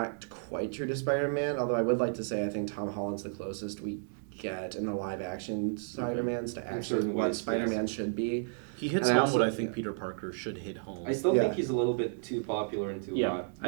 quite true to Spider-Man. Although I would like to say I think Tom Holland's the closest we get in the live action Spider-Mans to actually certain what ways, Spider-Man should be. He hits And I home also- what I think Peter Parker should hit home. I still Yeah. think he's a little bit too popular and too Yeah. hot.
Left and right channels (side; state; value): left; silent; digital silence